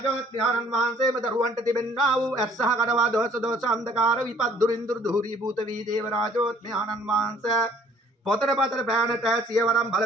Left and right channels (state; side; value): normal; both; correlation 0.58